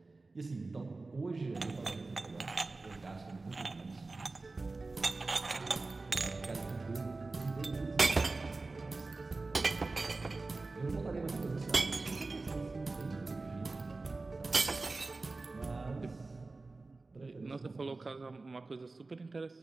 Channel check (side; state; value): left; quieter; 3.5 dB